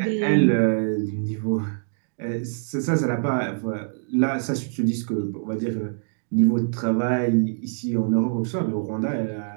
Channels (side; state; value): left; silent; digital silence